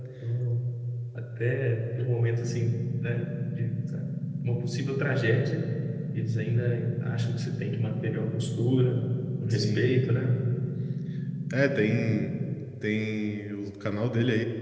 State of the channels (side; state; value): both; identical; correlation 1.00